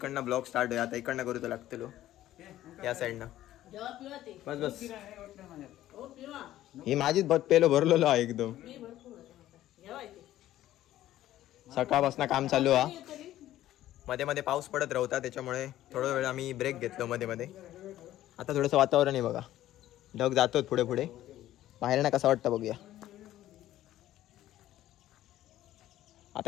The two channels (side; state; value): right; quieter; 13.7 dB